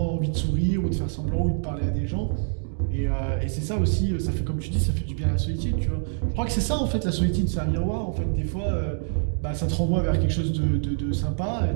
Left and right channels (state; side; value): silent; left; digital silence